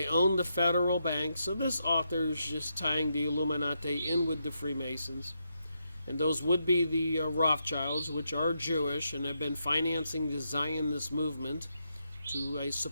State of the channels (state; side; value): inverted; both; correlation -0.82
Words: own the federal bank. So this author is just tying the Illuminati in with the Freemasons. And those would be the Rothschilds, which are Jewish and have been financing the Zionist movement to, I